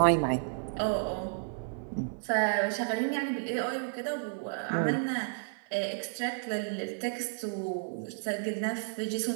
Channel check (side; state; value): left; silent; digital silence